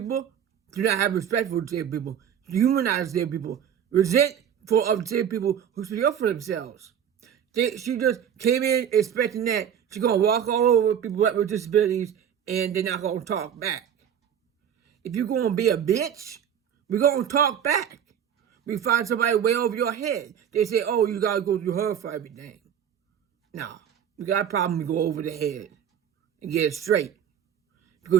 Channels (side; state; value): left; quieter; 8.9 dB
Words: do not have respect for disabled people, humanize disabled people, resent for disabled people who speak up for themselves. She just came in expecting that she's going to walk all over people with disabilities and they're not going to talk back. If you're going to be a bitch, we're going to talk back. We find somebody way over your head. They say, oh, you got to go through her for everything. No, you got a problem, you go over the head and get it straight.